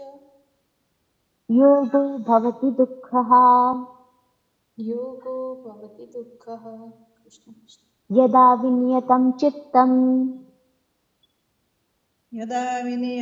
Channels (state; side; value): identical; both; correlation 1.00